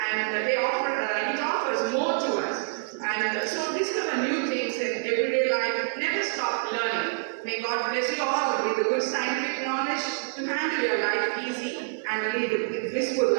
and it offers more to us. And so discover new things in everyday life. Never stop learning. May God bless you all with the good scientific knowledge to handle your life easy and lead a blissful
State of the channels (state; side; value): silent; left; 60 dB below the other